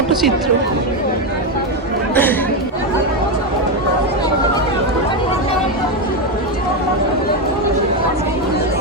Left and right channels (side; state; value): both; normal; correlation 0.08